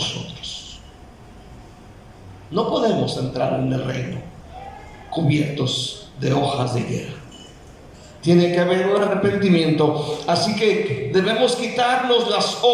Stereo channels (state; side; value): identical; both; correlation 1.00